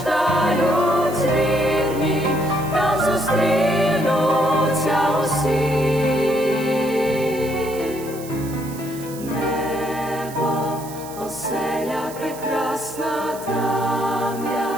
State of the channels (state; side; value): noise; right; hiss, 16 dB below the sound